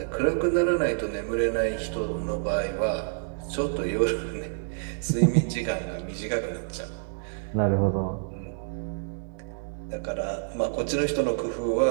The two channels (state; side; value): silent; left; digital silence